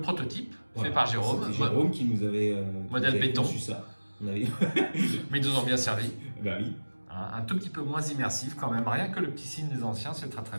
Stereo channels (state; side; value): inverted; both; correlation -1.00